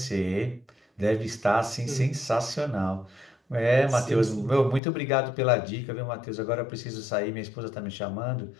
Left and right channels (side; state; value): right; drops out; at 4.8 s